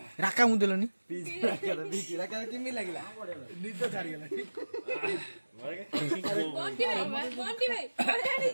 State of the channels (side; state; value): both; inverted; correlation -1.00